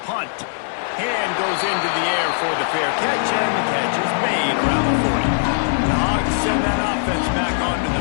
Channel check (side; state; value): right; silent; 66 dB below the other